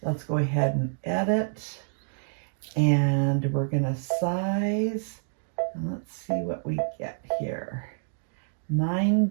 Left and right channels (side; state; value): left; silent; 58 dB below the other